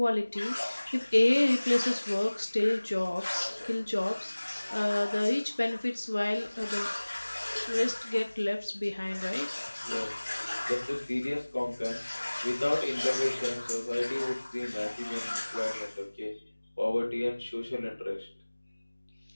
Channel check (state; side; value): inverted; both; correlation -1.00